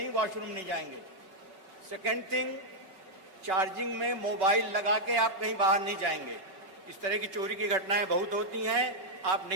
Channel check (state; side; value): late; left; 5.3 ms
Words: वॉशरूम नहीं जाएंगे. सेकेंड थिंग, चार्जिंग में मोबाइल लगा के आप कहीं बाहर नहीं जाएंगे. इस तरह की चोरी की घटनाएं बहुत होती हैं, आप